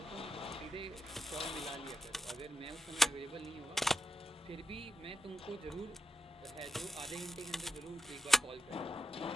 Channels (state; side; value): normal; both; correlation 0.86